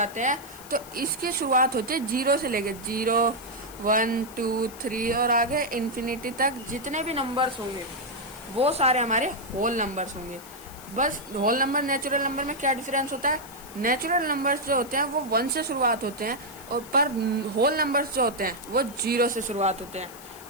हैं। तो इसकी शुरुआत होती है 0 से लेके 0, 1, 2, 3 और आगे इन्फिनिटी तक जितने भी नंबर्स होंगे वो सारे हमारे होल नंबर्स होंगे। बस होल नंबर नेचुरल नंबर में क्या डिफरेंस होता है, नेचुरल नंबर्स जो होते हैं वो 1 से शुरुआत होते हैं और पर होल नंबर्स जो होते हैं वो 0 से शुरुआत होते हैं।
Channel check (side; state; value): left; noise; hiss, 18 dB below the sound